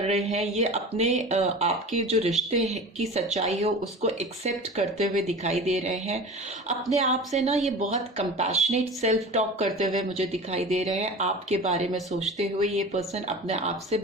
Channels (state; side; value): normal; both; correlation 0.35